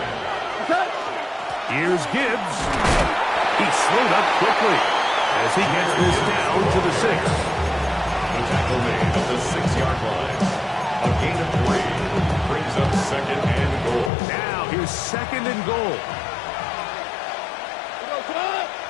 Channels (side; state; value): right; drops out; at 14.1 s